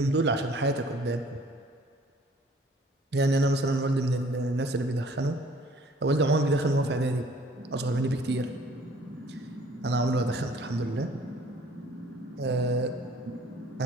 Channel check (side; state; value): both; normal; correlation 0.55